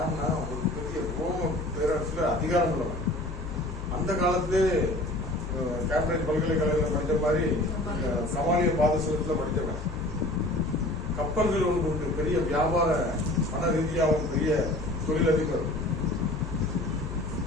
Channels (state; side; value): noise; left; hum, 9 dB below the sound